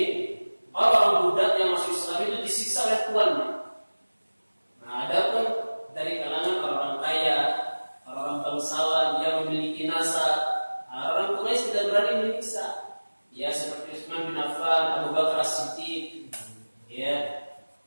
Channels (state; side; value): inverted; both; correlation -1.00